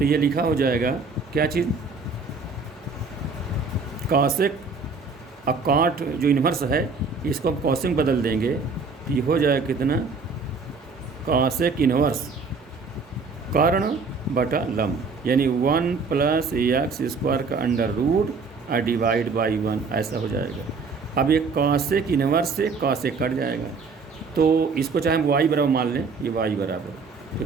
ये लिखा हो जाएगा क्या चीज़, कॉसेक। अब काट जो इन्वर्स है इसको हम कॉसेक बदल देंगे, तो ये हो जाएगा कितना, कॉसेक इन्वर्स कर्ण बटा लंब, यानी 1 प्लस एक्स स्क्वायर का अंडर रूट और डिवाइड बाई 1, ऐसा हो जाएगा। अब ये कॉसेक इन्वर्स से कॉसेक कट जाएगा, तो इसको चाहे हम y बराबर मान लें, ये y बराबर, तो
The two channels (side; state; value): left; quieter; 4.6 dB